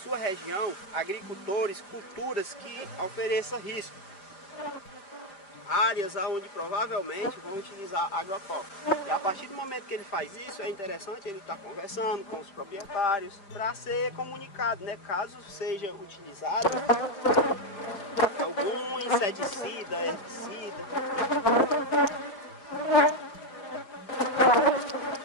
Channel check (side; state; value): right; late; 5.0 ms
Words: região agricultores, culturas que ofereçam risco. Áreas onde provavelmente vão utilizar agrotóxicos. E a partir do momento que ele faz isso, é interessante ele estar conversando com os proprietários para ser comunicado, né? Caso seja utilizado algum inseticida, herbicida.